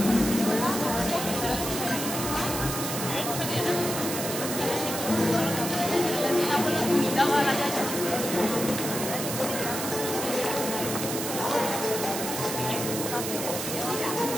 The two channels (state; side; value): noise; right; hiss, 4 dB below the sound